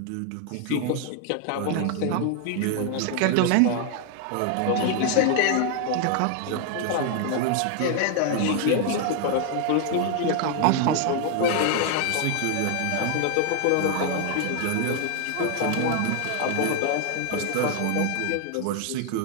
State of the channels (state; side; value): different; both; correlation 0.00